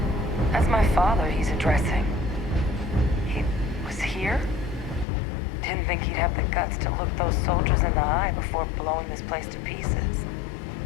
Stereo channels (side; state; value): right; drops out; at 5.1 s